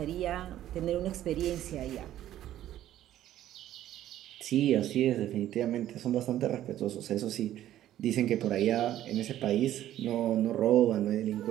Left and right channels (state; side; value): quieter; left; 12.7 dB